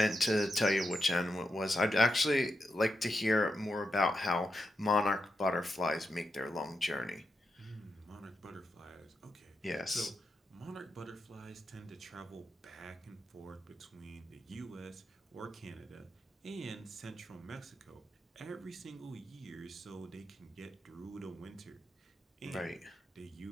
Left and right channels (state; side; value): normal; both; correlation 0.85